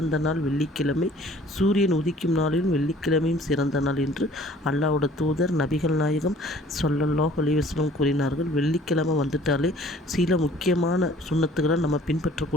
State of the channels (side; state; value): both; normal; correlation 0.53